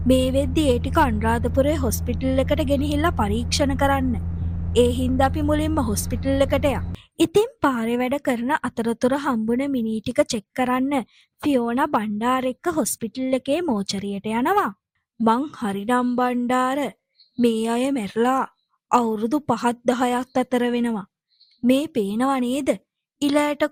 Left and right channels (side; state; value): both; identical; correlation 1.00